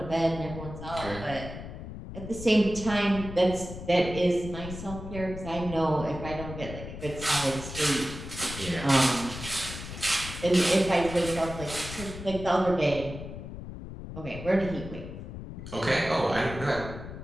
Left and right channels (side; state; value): left; noise; rumble, 10 dB below the sound